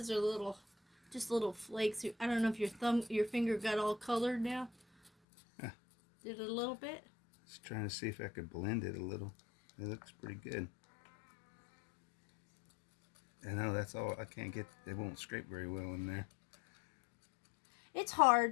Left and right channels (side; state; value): right; drops out; at 5.1 s